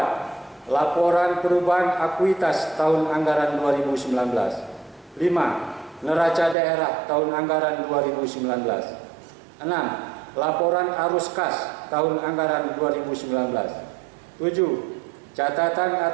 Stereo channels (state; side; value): drops out; left; at 6.6 s